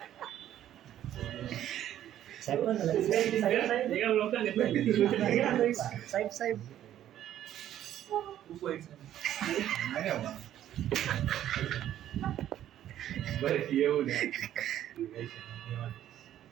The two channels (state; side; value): quieter; left; 11.7 dB